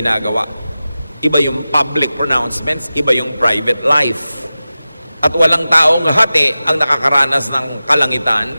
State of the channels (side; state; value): both; inverted; correlation -0.95